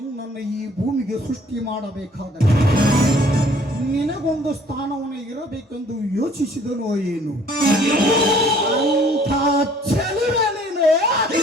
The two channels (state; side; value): normal; both; correlation 0.57